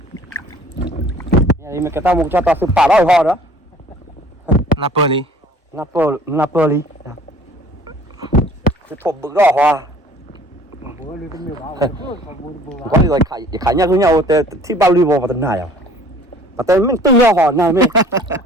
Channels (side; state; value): both; normal; correlation 0.52